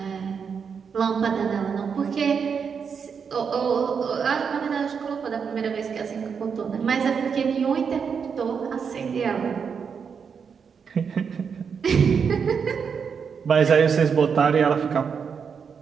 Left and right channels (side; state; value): left; quieter; 6.4 dB